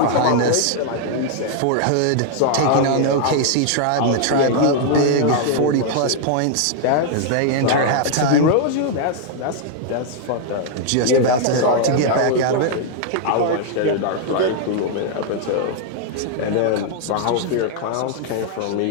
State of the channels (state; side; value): different; both; correlation 0.00